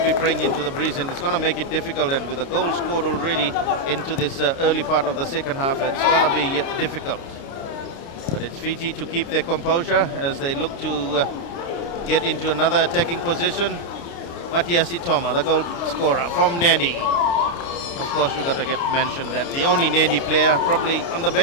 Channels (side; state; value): right; late; 29 ms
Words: be praying into the breeze, and it's going to make it difficult. And with a goal scored already into this early part of the second half, it's going to be difficult. But it's Fiji to keep their composure as they look to get into another attacking position. Matiasi Toma, the goal scorer from Nandi. Of course, we've got to get mentioned that the only Nandi player probably on the